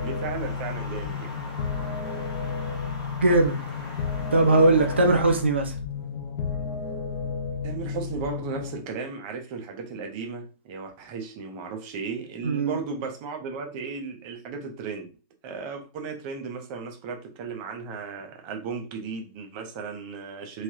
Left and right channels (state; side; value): inverted; both; correlation -0.53